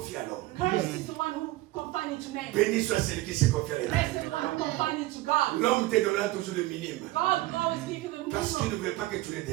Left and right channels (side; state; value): left; quieter; 18.3 dB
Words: à l'homme. Cursed is the one who confine into man. Béni soit celui qui se confie à Blessed is l'homme. the one who confine into God. L'homme te donnera toujours le minimum. God always gives you the Parce qu'il ne minimum. veut pas que tu le